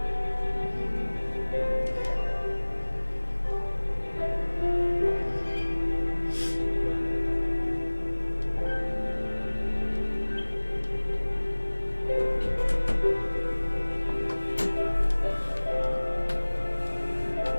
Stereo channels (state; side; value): inverted; both; correlation -1.00